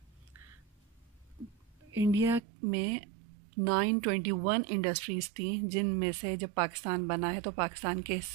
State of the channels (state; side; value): drops out; left; at 2.4 s